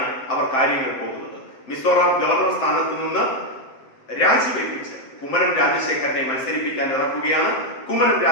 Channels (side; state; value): right; late; 7.7 ms